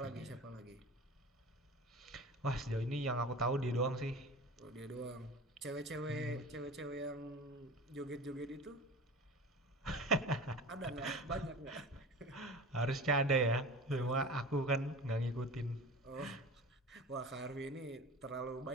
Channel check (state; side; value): normal; both; correlation 0.35